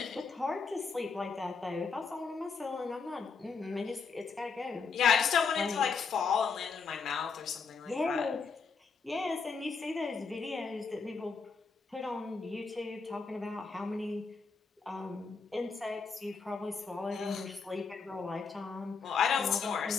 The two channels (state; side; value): quieter; right; 5.1 dB